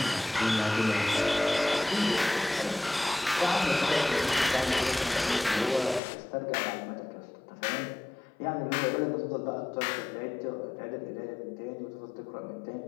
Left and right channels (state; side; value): drops out; right; at 6.0 s